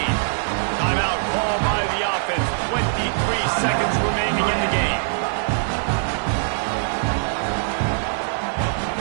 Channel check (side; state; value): left; silent; digital silence